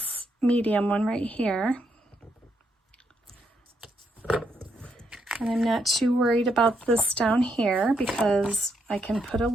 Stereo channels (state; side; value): normal; both; correlation 0.78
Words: medium one right here. And I'm not too worried about this down here because I can put a